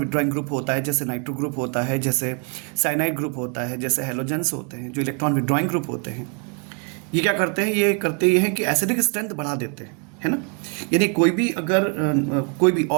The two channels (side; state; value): left; quieter; 37.5 dB